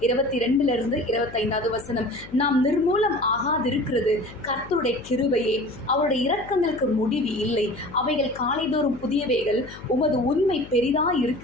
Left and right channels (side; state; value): left; noise; hum, 17 dB below the sound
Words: 22 25 வசனம், நாம் நிர்மூலம் ஆகாதிருக்கிறது கர்த்தருடைய கிருபையே, அவருடைய இரக்கங்களுக்கு முடிவு இல்லை, அவைகள் காலைதோறும் புதியவைகள், உமது உண்மை பெரிதாய்